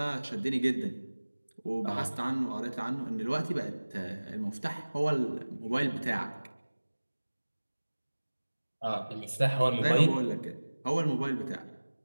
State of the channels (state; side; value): inverted; both; correlation -1.00